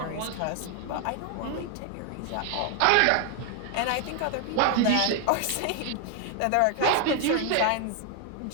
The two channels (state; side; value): different; both; correlation 0.00